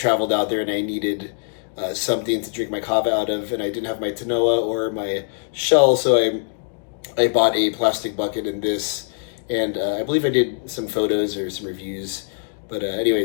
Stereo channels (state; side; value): silent; right; digital silence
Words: out there and I needed something to drink my kava out of, and I didn't have my tanoa or my shell, so I bought a plastic bucket in this, and I believe I did some photos or some reviews. But